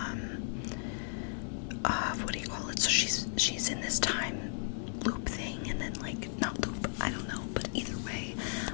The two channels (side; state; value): right; silent; digital silence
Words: what do you call it, so she's in this time loop thing, and then like, not loop, I don't know, but either way,